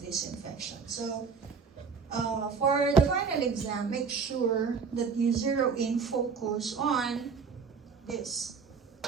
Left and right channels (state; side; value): quieter; left; 5.6 dB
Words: this infection. So for the final exam, make sure that you zero in focus on this,